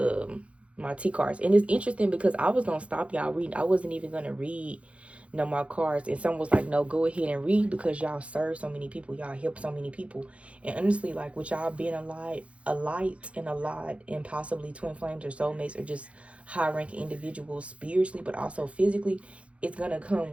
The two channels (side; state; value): left; late; 0.062 ms